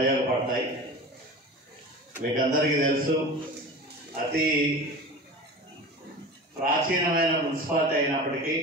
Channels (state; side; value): normal; both; correlation 0.33